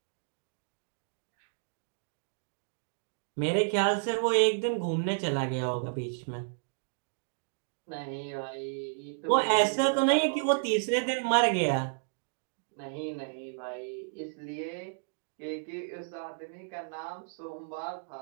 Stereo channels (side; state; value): left; silent; digital silence